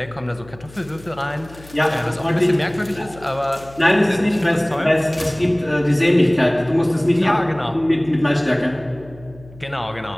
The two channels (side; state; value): left; noise; hum, 21 dB below the sound